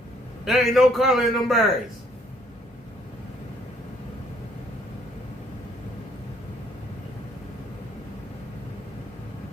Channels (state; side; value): normal; both; correlation 0.65